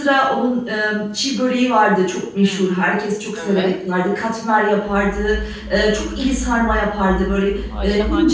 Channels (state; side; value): identical; both; correlation 1.00